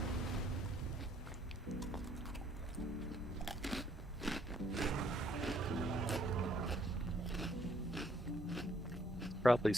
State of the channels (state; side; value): normal; both; correlation 0.67